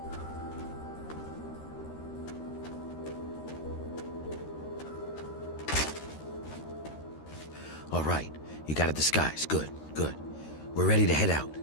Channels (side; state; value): right; late; 13 ms